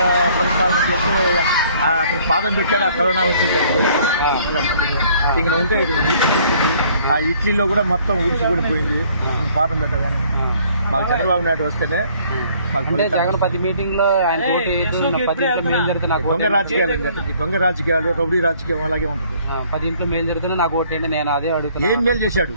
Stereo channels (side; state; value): both; inverted; correlation -0.59